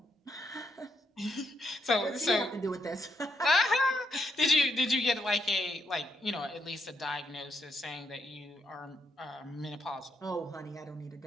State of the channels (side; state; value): both; normal; correlation 0.77